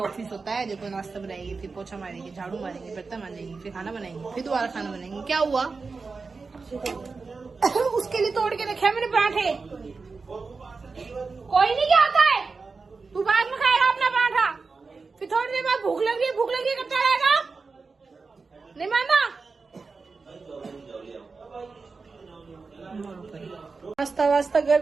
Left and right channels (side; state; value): left; quieter; 4.4 dB